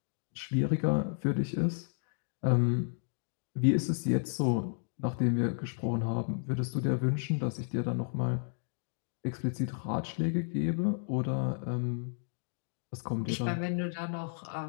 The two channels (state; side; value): silent; right; digital silence